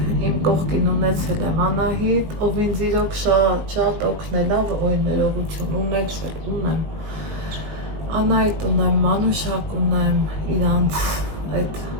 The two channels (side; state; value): left; late; 19 ms